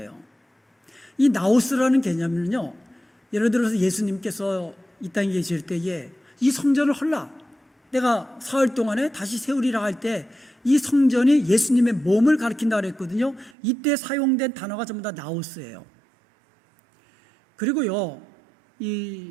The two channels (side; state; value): left; drops out; at 13.6 s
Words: 이 나우스라는 개념은요, 예를 들어서 예수님께서 이 땅에 계실 때에 이 성전을 헐라, 내가 사흘 동안에 다시 세우리라 할 때 이 성전이 예수님의 몸을 가리킨다고 그랬거든요. 이때 사용된 단어가 전부 다 나우스예요. 그리고요,